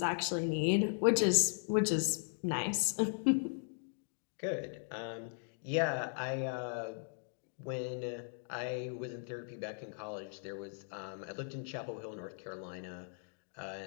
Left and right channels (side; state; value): right; silent; digital silence